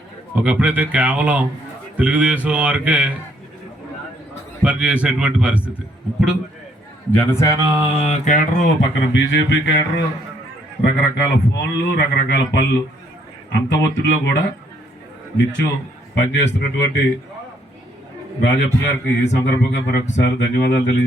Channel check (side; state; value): both; normal; correlation 0.69